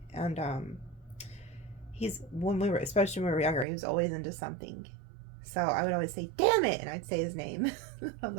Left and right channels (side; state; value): left; drops out; at 3.7 s